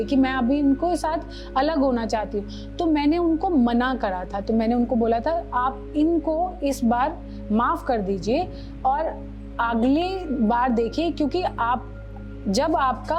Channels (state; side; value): identical; both; correlation 1.00